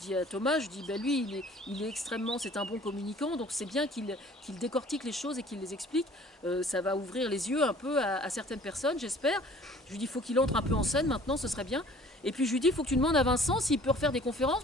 à Thomas, je dis, ben lui, il est extrêmement, c'est un bon communicant, donc c'est bien qu'il décortique les choses et qu'il les explique. Ça va ouvrir les yeux un peu à certaines personnes, j'espère. Je lui dis, il faut qu'il entre un peu en scène maintenant, ce serait bien. Et puis je lui dis, il faut que tu demandes à Vincent s'il peut refaire des conférences,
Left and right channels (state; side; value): normal; both; correlation 0.51